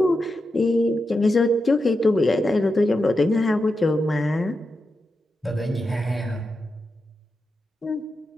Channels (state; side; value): normal; both; correlation 0.88